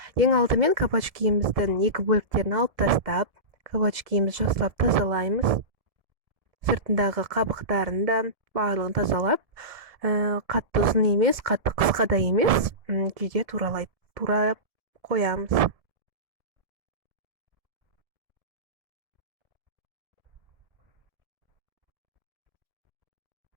Ең алдымен кабачкиіміздің екі бөліктерін алып тастап, кабачкиімізді жақсылап тазалаймыз. Сыртындағы қабықтарын да барлығын тазалап, қатты ұзын емес, қатты қысқа да емес, күйде туралап қоямыз.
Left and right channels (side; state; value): left; late; 1.7 ms